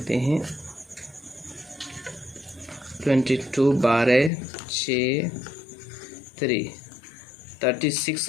हैं, 22 12 6 3,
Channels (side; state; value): right; drops out; at 4.3 s